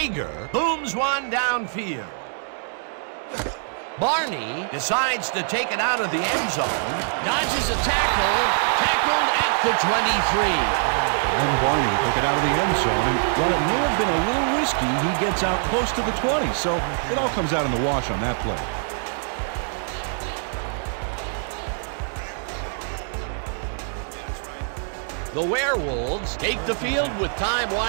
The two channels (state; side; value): silent; left; 63 dB below the other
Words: booms one downfield. Barney decides to take it out of the end zone. Dodges a tackle. Tackled at the 23. And Barney took it out of the end zone, and while it may have been a little risky, he gets out close to the 20, so it all comes out in the wash on that play. The Werewolves take the field with time